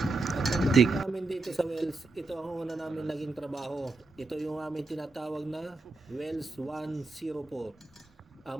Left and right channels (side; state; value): left; quieter; 3.2 dB